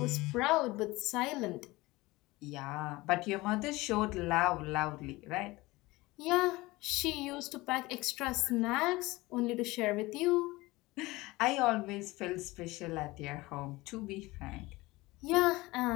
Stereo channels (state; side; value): quieter; right; 20.8 dB